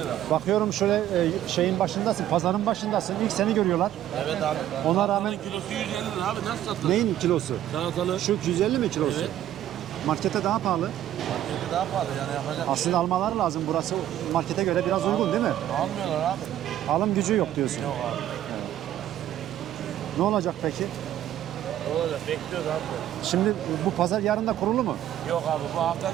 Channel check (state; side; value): quieter; left; 12.2 dB